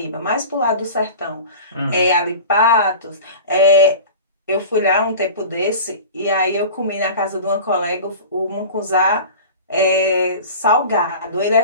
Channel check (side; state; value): both; inverted; correlation -0.36